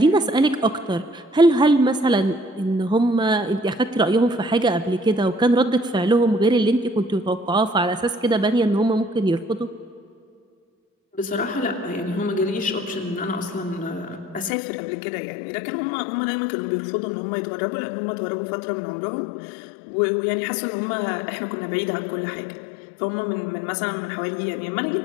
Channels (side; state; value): right; drops out; at 14.5 s